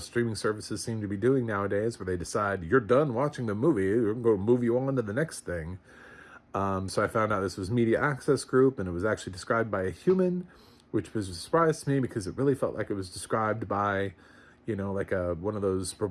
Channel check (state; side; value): identical; both; correlation 1.00